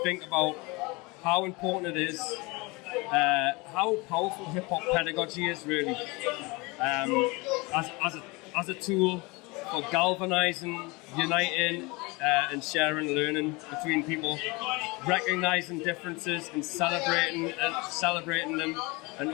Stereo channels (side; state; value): right; quieter; 25.6 dB